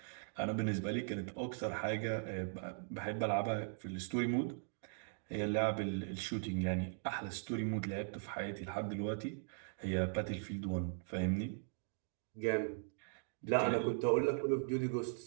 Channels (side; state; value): left; silent; digital silence